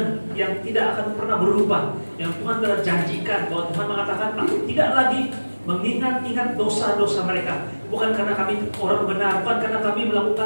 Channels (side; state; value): both; inverted; correlation -1.00